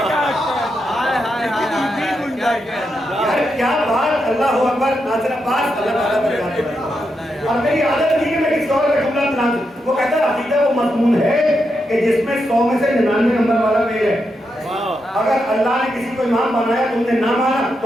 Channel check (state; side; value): normal; both; correlation 0.84